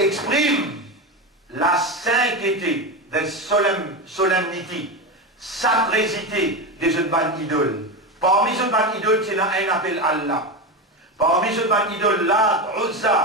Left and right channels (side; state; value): both; normal; correlation 0.18